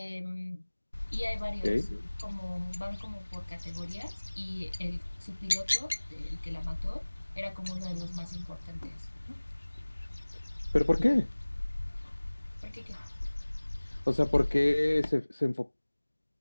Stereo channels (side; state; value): both; inverted; correlation -1.00